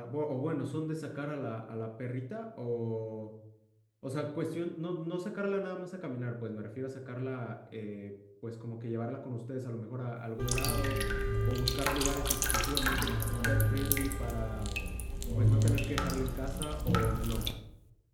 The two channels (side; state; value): both; identical; correlation 1.00